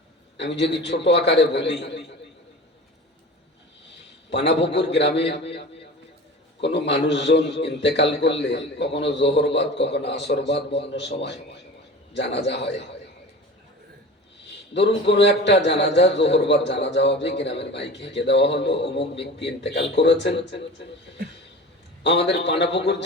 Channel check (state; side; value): normal; both; correlation 0.36